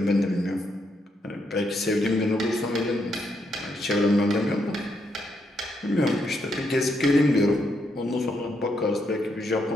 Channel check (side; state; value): both; normal; correlation 0.78